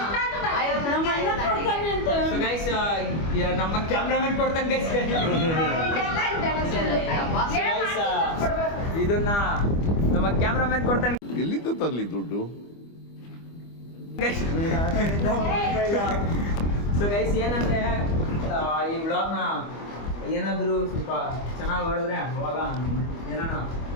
ಗೈಸ್ ನಮ್ಮ ಕ್ಯಾಮ್ರಾಮನ್ ಕೊಡ್ತಾನೆ ಗೈಸ್. ಇದನ್ನ ನಮ್ಮ ಕ್ಯಾಮ್ರಾಮನ್ ಕೊಡ್ತಾನೆ. ಎಲ್ಲಿಂದ ತರ್ಲಿ ದುಡ್ಡು? ಸೊ ಗೈಸ್ ಏನಂದ್ರೆ ಈ ವ್ಲಾಗ್ನ ಏನಾದರೂ ಸ್ವಲ್ಪ ಚೆನ್ನಾಗಿ ಹೊಡೆದ್ರೆ ಅವಾಗ ಏನಾನ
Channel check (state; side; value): late; right; 25 ms